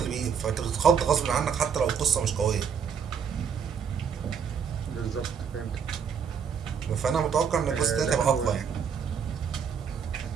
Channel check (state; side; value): quieter; left; 6.9 dB